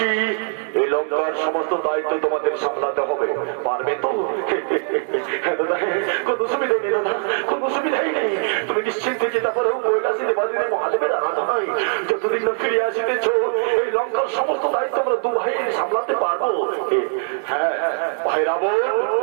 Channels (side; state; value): left; silent; 55 dB below the other